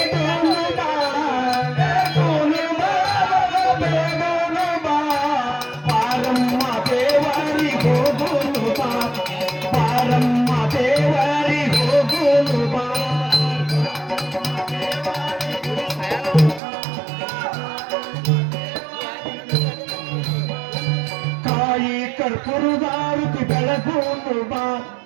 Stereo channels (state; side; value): drops out; left; at 16.6 s